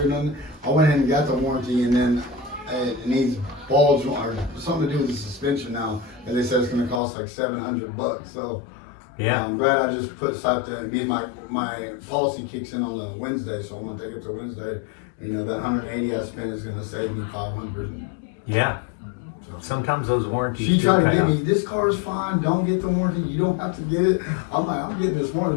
or nothing. I went ahead and got the warranty, and then it needs balls or something to do with the suspension now, and they said it's gonna cost like $700. So Yeah. I'm glad I just slapped that. Because my policy kicks in on the Wednesday, so I'm gonna take it to Wednesday. And, you know, that 180 I spent is gonna save me 500. Yeah. Sometimes those warranties She do tried to pay get off. me, this car is fine, don't get the warranty, you don't have to get it. I'm like, I'm getting this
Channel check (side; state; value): right; drops out; at 7.0 s